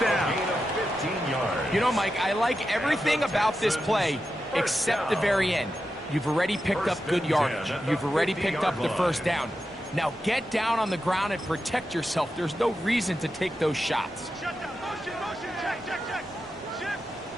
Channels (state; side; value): normal; both; correlation 0.89